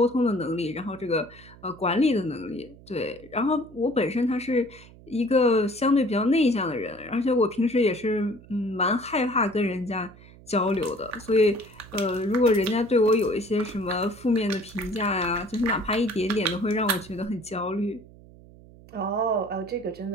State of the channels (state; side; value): noise; right; hum, 22 dB below the sound